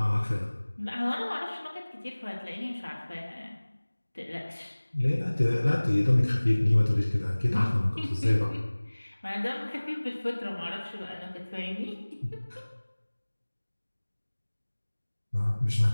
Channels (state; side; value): inverted; both; correlation -1.00